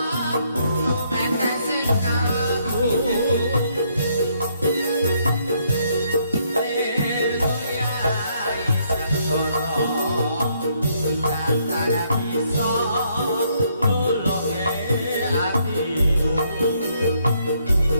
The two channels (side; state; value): both; inverted; correlation -0.71